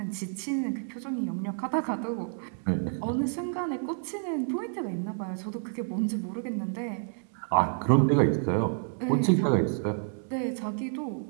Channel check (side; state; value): left; silent; digital silence